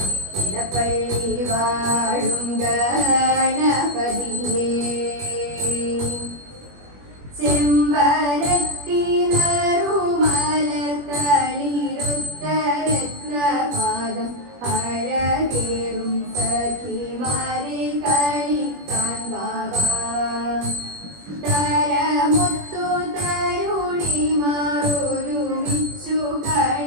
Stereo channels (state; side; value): late; left; 21 ms